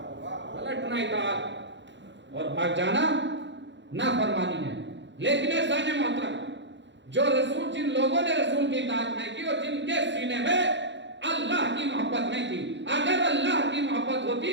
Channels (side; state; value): left; late; 0.53 ms